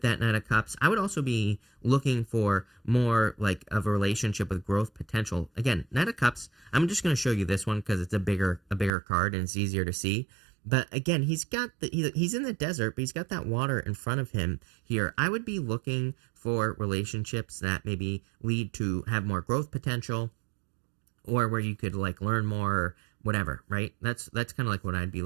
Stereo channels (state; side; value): drops out; left; at 8.9 s